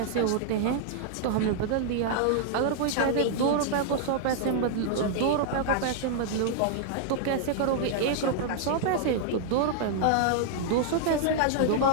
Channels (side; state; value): both; different; correlation -0.01